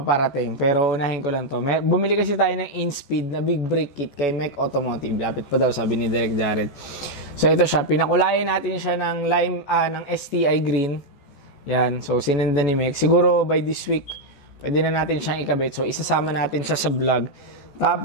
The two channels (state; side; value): late; right; 14 ms